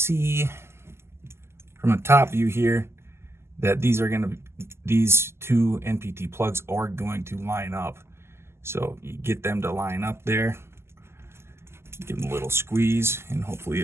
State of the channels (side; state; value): left; late; 0.12 ms